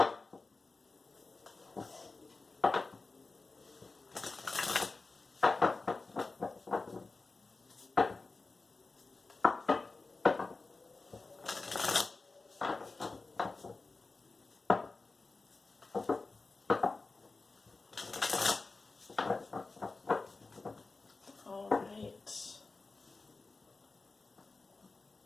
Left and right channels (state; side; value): quieter; right; 3.7 dB